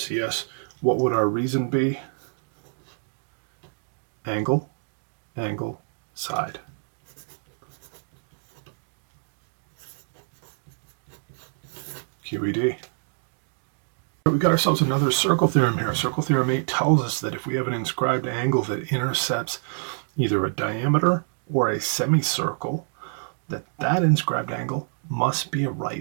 What would our reason be? Angle, angle, side. QED. We got ourselves another circle theorem here. Circle theorem 8 tells us that if we have an inscribed angle that intercepts either a diameter or a semicircle, that inscribed angle must be a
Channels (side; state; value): left; silent; digital silence